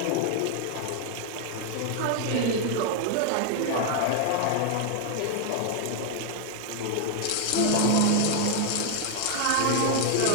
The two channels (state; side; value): different; both; correlation 0.00